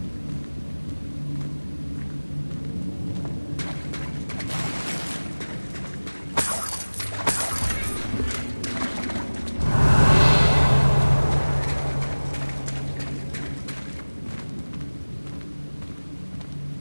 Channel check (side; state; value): both; inverted; correlation -1.00